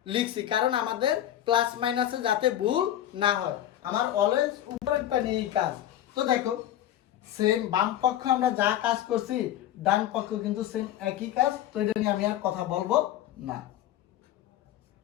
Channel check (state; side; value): quieter; right; 12.1 dB